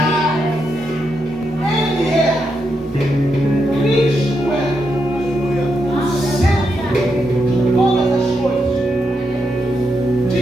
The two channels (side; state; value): both; normal; correlation 0.83